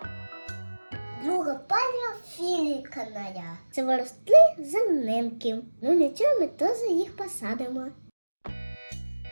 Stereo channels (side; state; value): both; inverted; correlation -1.00